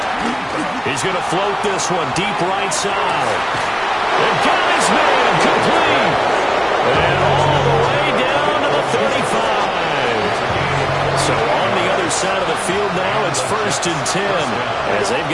He's going to float this one deep right side. And got his man complete. And all the way down to the 35. So on the other side of the field now, it's 1st and 10 as they've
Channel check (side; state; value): both; identical; correlation 1.00